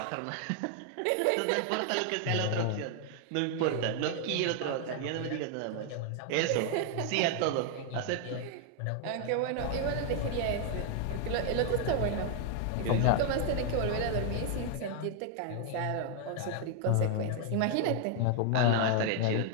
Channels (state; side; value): different; both; correlation 0.00